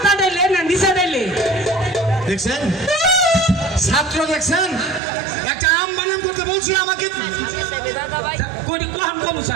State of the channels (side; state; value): left; drops out; at 5.0 s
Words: ডাইলে না নিচে ডাইলে দেখছেন ছাত্র দেখছেন একটা আম বানান করতে বলছি আমাকে কোনি কোন কোন